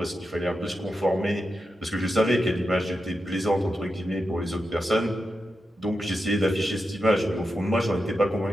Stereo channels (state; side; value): normal; both; correlation 0.88